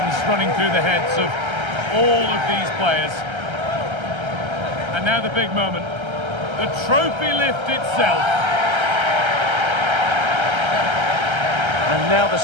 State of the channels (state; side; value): late; left; 1.3 ms